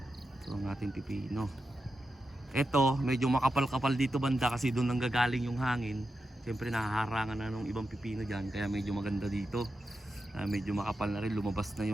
Ito ang ating pipino. Ito, medyo makapal-kapal dito banda kasi doon nanggagaling yung hangin. Siyempre nahaharangan na ng ibang pipino dyan, kaya medyo maganda dito. Medyo makapal na rin, lumabas na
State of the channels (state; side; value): normal; both; correlation 0.89